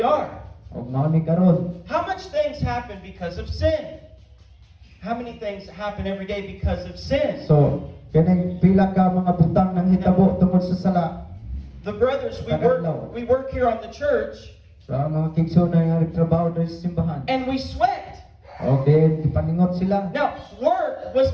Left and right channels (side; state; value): both; identical; correlation 1.00